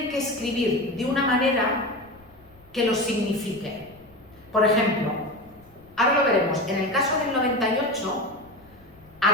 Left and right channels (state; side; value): noise; left; rumble, 27 dB below the sound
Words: que escribir de una manera que los signifique. Por ejemplo, ahora lo veremos, en el caso del 98,